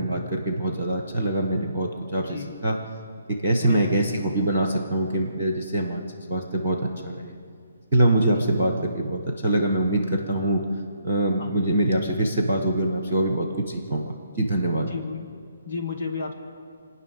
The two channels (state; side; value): inverted; both; correlation -0.71